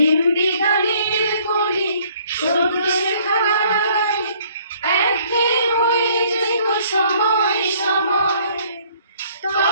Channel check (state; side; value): inverted; both; correlation -0.60